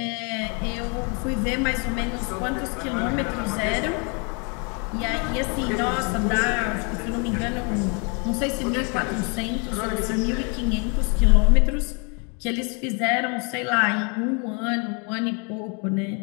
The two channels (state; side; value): quieter; right; 34.9 dB